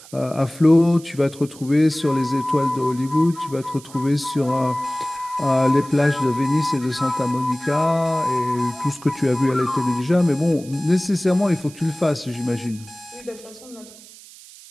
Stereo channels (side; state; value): right; noise; hiss, 20 dB below the sound